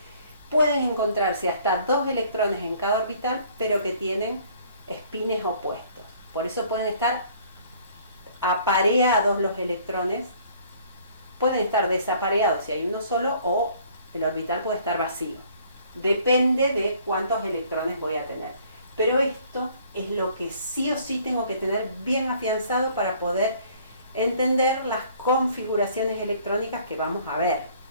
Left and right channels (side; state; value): both; inverted; correlation -0.57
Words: pueden encontrarse hasta 2 electrones en cada orbital, pero que tienen spines opuestos. Por eso pueden estar apareados los electrones. Pueden estar desapareados si hay uno solo, o el orbital puede estar vacío. Depende de cuántos electrones voy a tener. Pero esto es lo que sí o sí tengo que tener bien afianzado para poder entender las configuraciones electrónicas que vamos a ver.